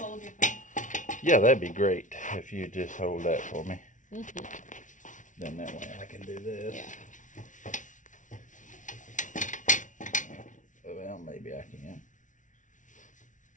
Yeah, that'd be great if you just hold that for me. Then that way I can do this. Well, maybe I can.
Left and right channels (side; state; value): right; late; 0.37 ms